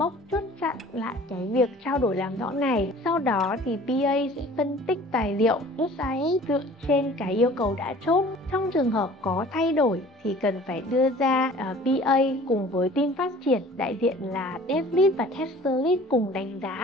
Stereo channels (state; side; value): normal; both; correlation 0.48